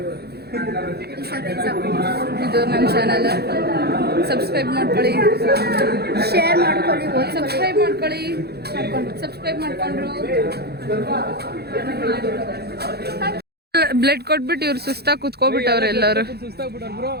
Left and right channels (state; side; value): late; left; 0.47 ms